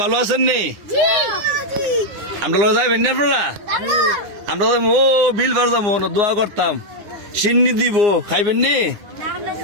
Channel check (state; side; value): late; left; 9.8 ms